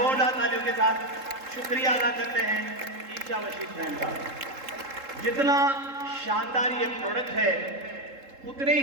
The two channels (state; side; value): late; left; 3.7 ms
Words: तालियों के साथ शुक्रिया अदा करते हैं ईशा वशिष्ठ मैम का। जितना शानदार ये प्रोडक्ट है, उतने